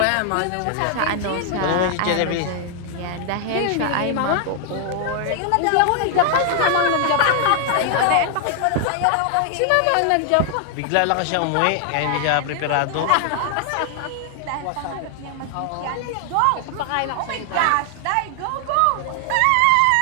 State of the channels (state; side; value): different; both; correlation 0.00